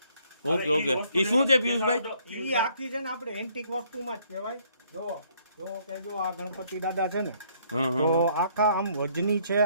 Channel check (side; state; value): both; inverted; correlation -0.65